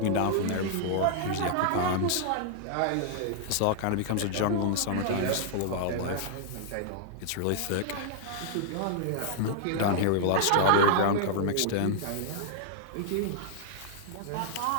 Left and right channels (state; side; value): different; both; correlation -0.01